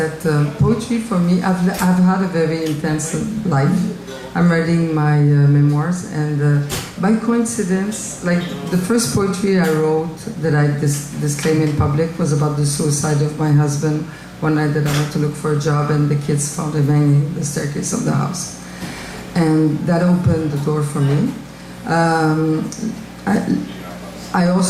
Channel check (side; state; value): both; identical; correlation 1.00